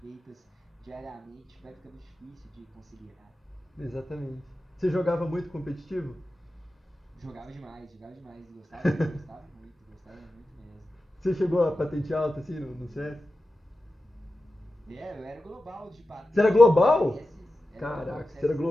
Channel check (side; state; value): both; normal; correlation 0.93